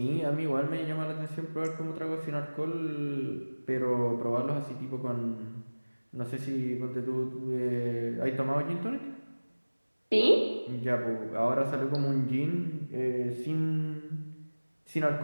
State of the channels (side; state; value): both; inverted; correlation -1.00